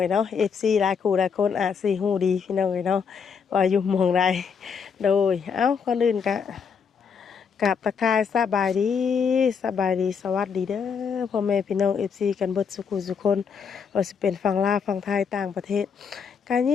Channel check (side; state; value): right; quieter; 6.4 dB